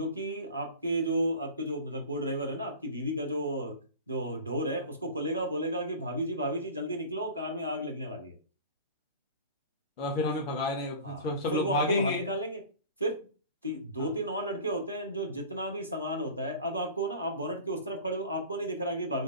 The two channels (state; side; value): inverted; both; correlation -0.38